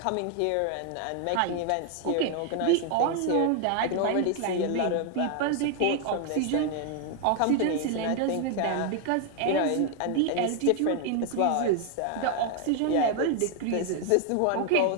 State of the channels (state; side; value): different; both; correlation 0.01